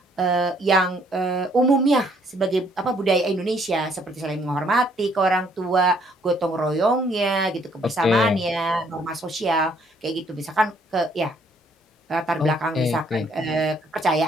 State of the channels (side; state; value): both; normal; correlation 0.65